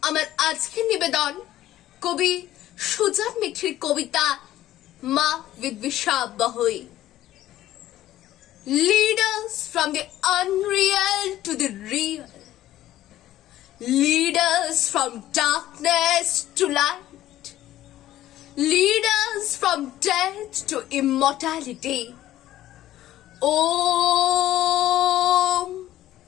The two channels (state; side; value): quieter; right; 13.9 dB